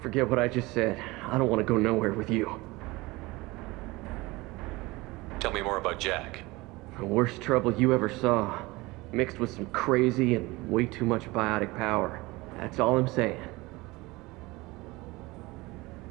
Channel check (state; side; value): quieter; left; 21.9 dB